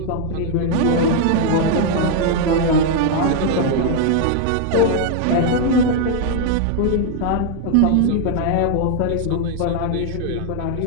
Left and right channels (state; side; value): different; both; correlation 0.00